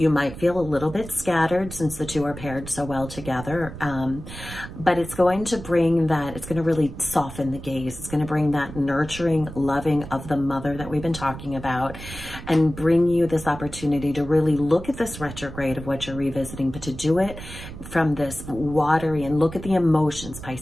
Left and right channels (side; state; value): right; noise; rumble, 12 dB below the sound